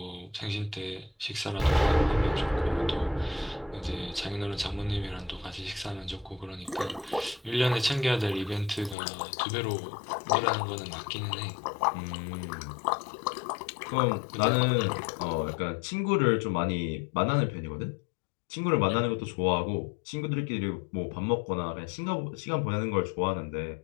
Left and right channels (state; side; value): drops out; right; at 9.0 s